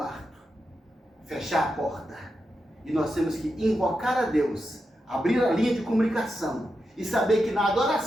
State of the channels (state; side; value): normal; both; correlation 0.87